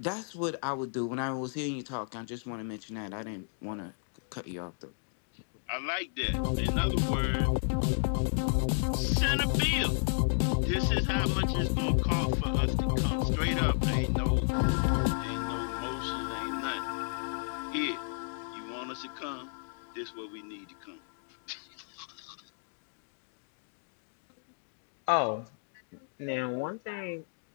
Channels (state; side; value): silent; right; digital silence